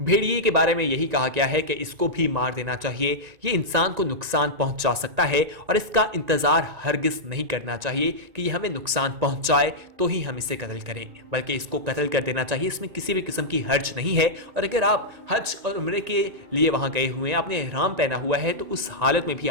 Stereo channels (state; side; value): late; left; 1.9 ms